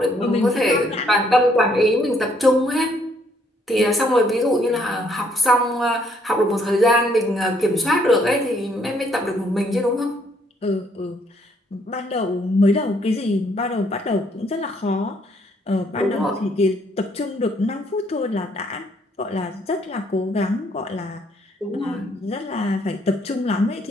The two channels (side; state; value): both; normal; correlation 0.68